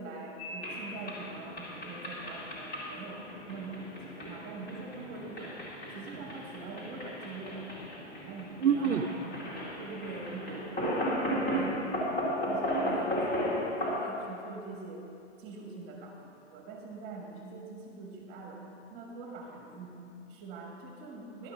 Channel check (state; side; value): normal; both; correlation 0.21